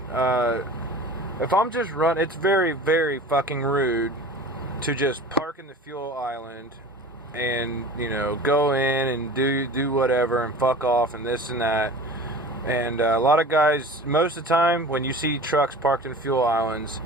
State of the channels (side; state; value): both; normal; correlation 0.39